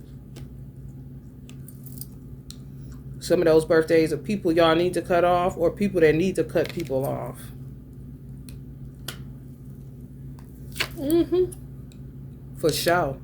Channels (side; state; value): both; identical; correlation 1.00